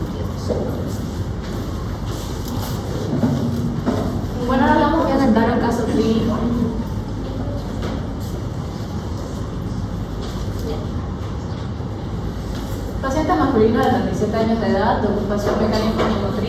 Bueno, ahora vamos a presentar un caso clínico. Paciente masculino de 37 años de edad, de ocupación mecánica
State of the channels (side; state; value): both; identical; correlation 1.00